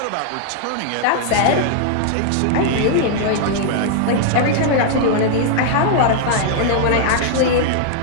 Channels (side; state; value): both; different; correlation -0.01